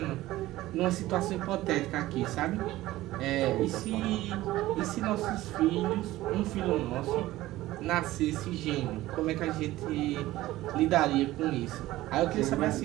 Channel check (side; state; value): left; quieter; 16.6 dB